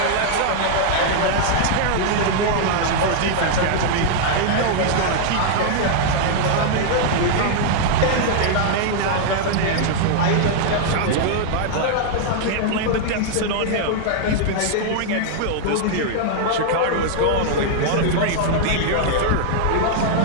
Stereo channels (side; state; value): both; different; correlation -0.01